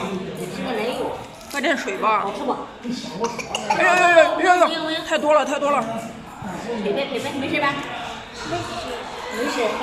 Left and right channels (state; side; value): identical; both; correlation 1.00